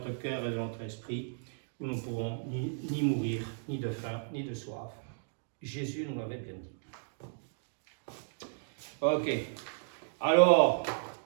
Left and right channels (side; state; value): left; silent; digital silence